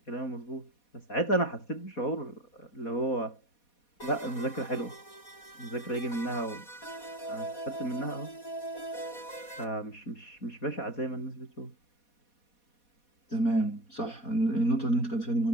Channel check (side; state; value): right; late; 4.2 ms